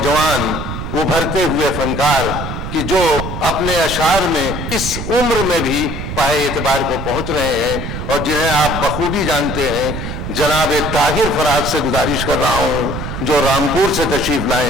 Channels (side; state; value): right; noise; rumble, 6 dB below the sound